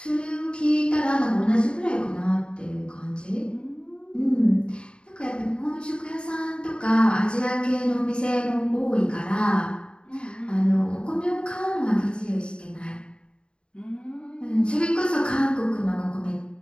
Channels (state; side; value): late; right; 0.053 ms